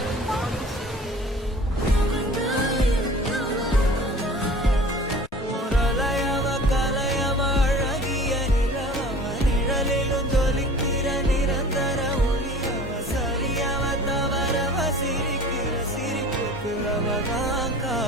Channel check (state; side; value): normal; both; correlation 0.43